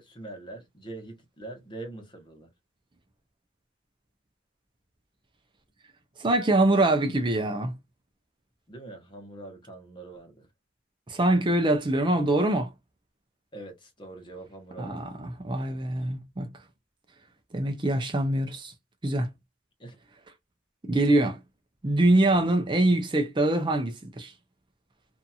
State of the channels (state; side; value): normal; both; correlation 0.65